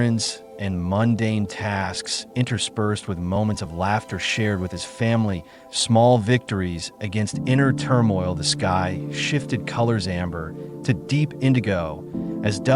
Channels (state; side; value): identical; both; correlation 1.00